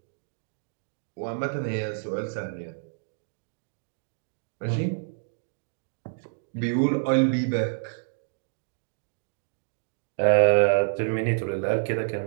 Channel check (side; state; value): left; silent; digital silence